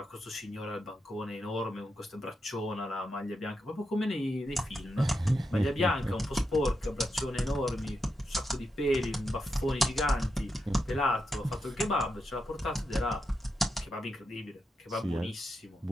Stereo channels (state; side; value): normal; both; correlation 0.86